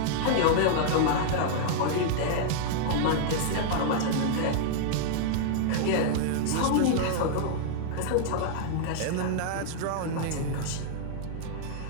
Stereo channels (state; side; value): different; both; correlation -0.01